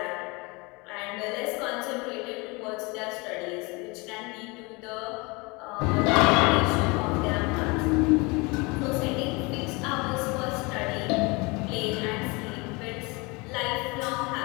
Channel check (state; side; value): quieter; right; 26.9 dB